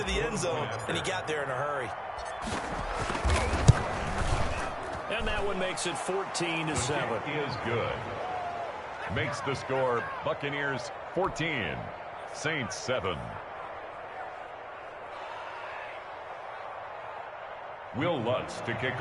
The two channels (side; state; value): both; identical; correlation 1.00